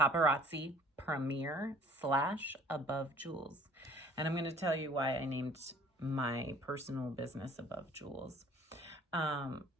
premier / Above Jewels. And I'm going to tell you why I named my personal business Above Jewels. I'll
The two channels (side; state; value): both; normal; correlation 0.53